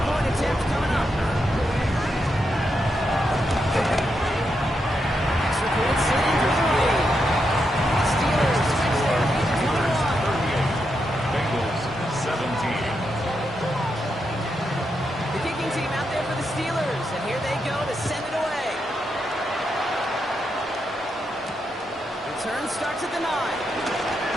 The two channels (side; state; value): both; normal; correlation 0.83